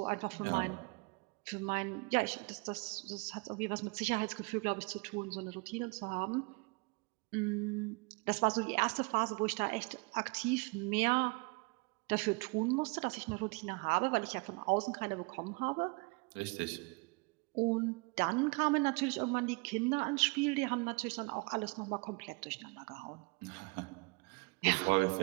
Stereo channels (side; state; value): left; quieter; 29.5 dB